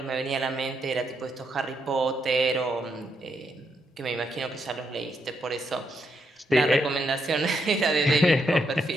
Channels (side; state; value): both; normal; correlation 0.79